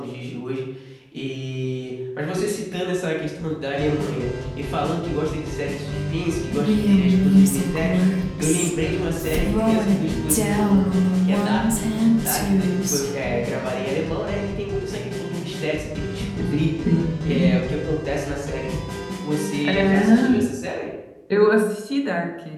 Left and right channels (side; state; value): both; identical; correlation 1.00